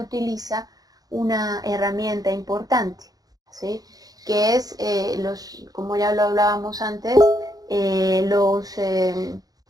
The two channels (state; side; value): late; left; 0.18 ms